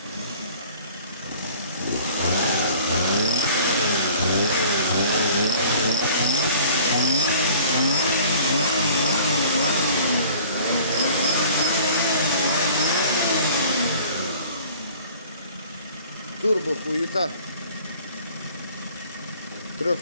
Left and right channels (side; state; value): both; inverted; correlation -0.49